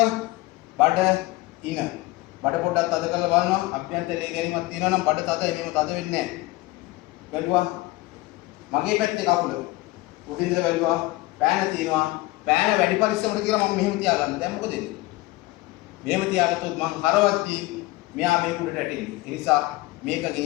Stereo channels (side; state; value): right; quieter; 19.8 dB